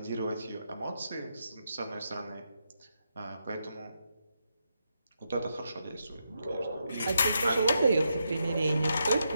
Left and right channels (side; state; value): both; inverted; correlation -0.83